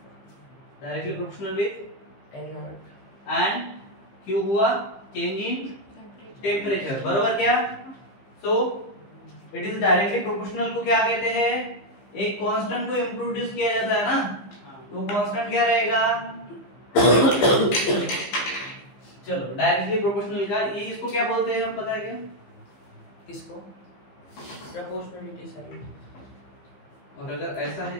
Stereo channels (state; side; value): late; right; 15 ms